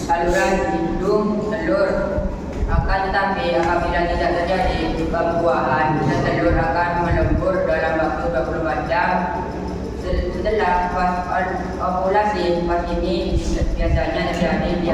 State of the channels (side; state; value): both; identical; correlation 1.00